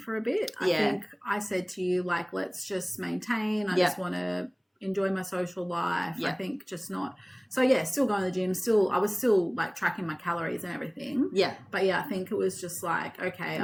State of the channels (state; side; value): identical; both; correlation 1.00